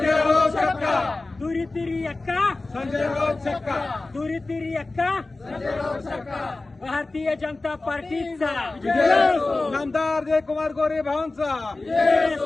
राऊत छक्का, दुरी तिरी अक्का, संजय राऊत छक्का, दुरी तिरी अक्का, भारतीय जनता पार्टीचा नामदार जयकुमार गोरे भाऊंचा।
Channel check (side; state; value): right; quieter; 3.2 dB